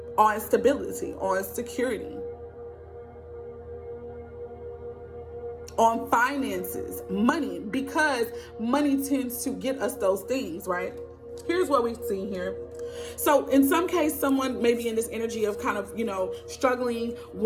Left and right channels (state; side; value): identical; both; correlation 1.00